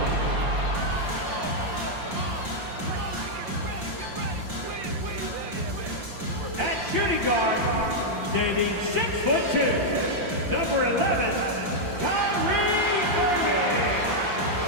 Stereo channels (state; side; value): late; left; 5.8 ms